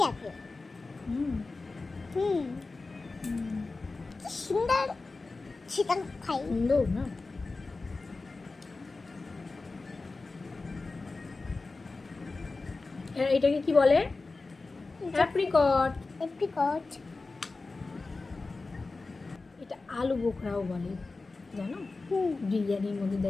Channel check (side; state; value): right; quieter; 3.7 dB